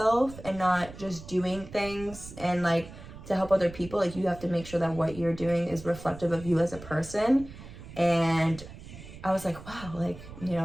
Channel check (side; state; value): right; noise; rumble, 15 dB below the sound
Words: and not just doing things and, like, to help other people, like, you have to make sure that what you're doing is reflective of you as a person. And I was like, wow, like,